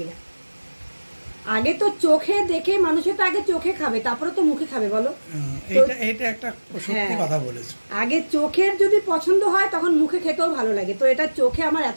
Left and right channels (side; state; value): both; inverted; correlation -1.00